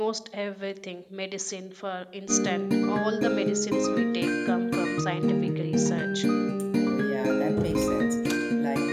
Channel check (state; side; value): identical; both; correlation 1.00